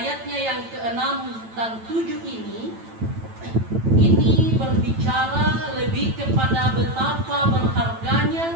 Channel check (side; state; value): left; late; 9.0 ms